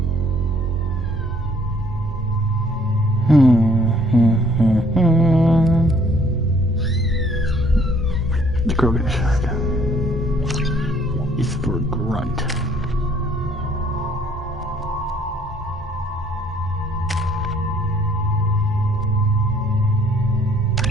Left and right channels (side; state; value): both; normal; correlation 0.61